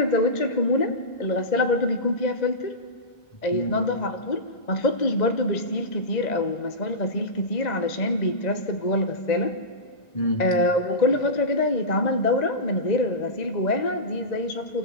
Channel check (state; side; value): late; right; 1.9 ms